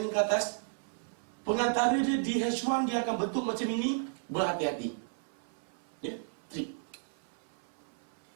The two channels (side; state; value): left; silent; 55 dB below the other